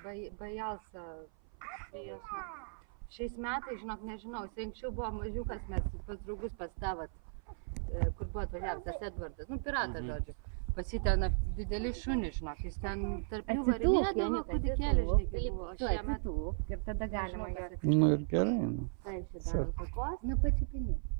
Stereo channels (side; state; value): left; silent; 54 dB below the other